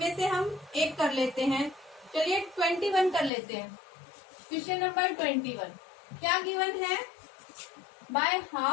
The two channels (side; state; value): right; drops out; at 3.3 s